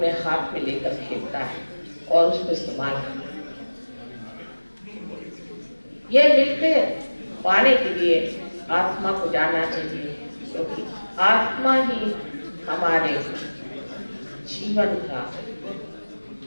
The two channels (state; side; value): inverted; both; correlation -1.00